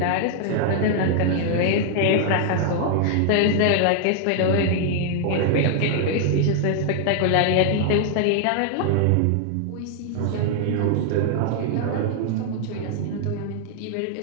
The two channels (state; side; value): different; both; correlation 0.00